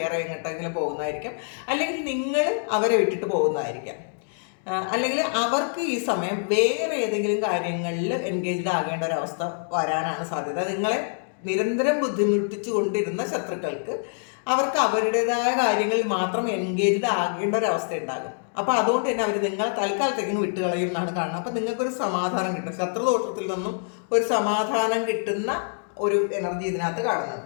എങ്ങോട്ടെങ്കിലും പോകുന്നതായിരിക്കും, അല്ലെങ്കിൽ നിങ്ങൾ അവരെ വിട്ടിട്ട് പോകുന്നതായിരിക്കാം, അല്ലെങ്കിൽ അവർക്ക് ഈ സമയം വേറെ ഏതെങ്കിലും കാര്യങ്ങളിൽ എൻഗേജ്ഡ് ആകേണ്ട ഒരു അവസ്ഥ വരാനാണ് സാധ്യത. നിങ്ങളെ നിരന്തരം ബുദ്ധിമുട്ടിച്ചു കൊണ്ടിരുന്ന ശത്രുക്കൾക്ക് അവർക്ക് അവരുടേതായ കാര്യങ്ങളിൽ മാത്രം എൻഗേജ്ഡ് ആകേണ്ട ഒരു അവസ്ഥ ഉണ്ടാകും. അപ്പോൾ അതുകൊണ്ട് തന്നെ അവർ നിങ്ങളെ തൽക്കാലത്തേക്കും വിട്ടുകളയും എന്നാണ് കാണുന്നത്. അപ്പം നിങ്ങൾക്കൊരു സമാധാനം കിട്ടും, ശത്രുദോഷത്തിൽ നിന്നും ഒരു സമാധാനം കിട്ടുന്ന ഒരു എനർജി ഇതിനകത്ത്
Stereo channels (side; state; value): right; silent; digital silence